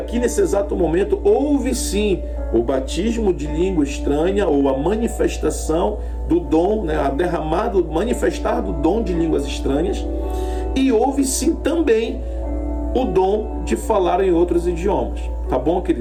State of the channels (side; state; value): both; identical; correlation 1.00